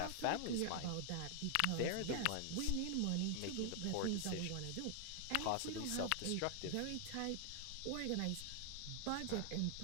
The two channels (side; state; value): both; different; correlation 0.00